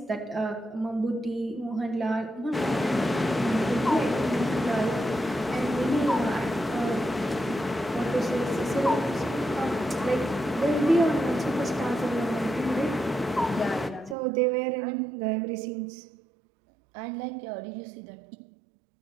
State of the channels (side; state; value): left; drops out; at 14.2 s